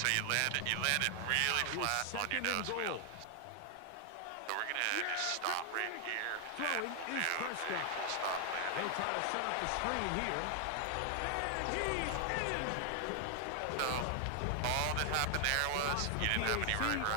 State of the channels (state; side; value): different; both; correlation 0.00